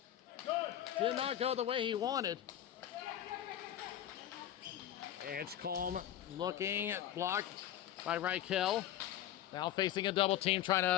Did not go the way he wanted. Edgecombe looking, blocked by Reichel. Now facing a double team, trying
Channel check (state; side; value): quieter; right; 11.8 dB